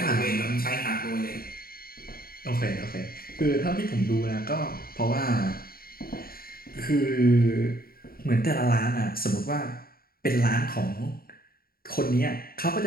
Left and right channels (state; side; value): late; right; 0.43 ms